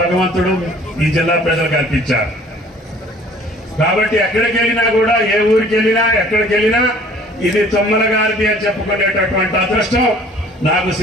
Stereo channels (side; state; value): both; normal; correlation 0.53